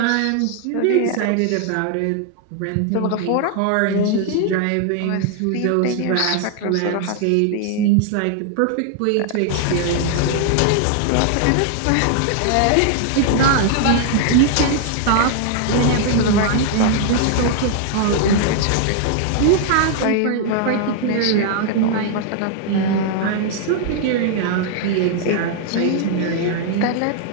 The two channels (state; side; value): different; both; correlation 0.00